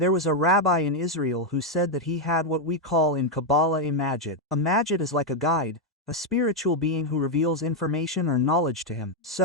was a rabbi in Israel who said that he had what we call in Kabbalah a Magid. A Magid is like a guide, a spiritual being who reveals information or knowledge to him.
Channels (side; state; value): both; normal; correlation 0.01